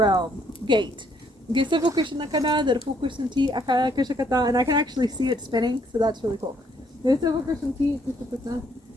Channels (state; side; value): normal; both; correlation 0.68